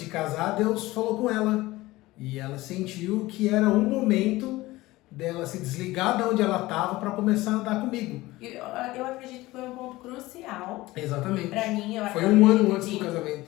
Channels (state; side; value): quieter; right; 18.9 dB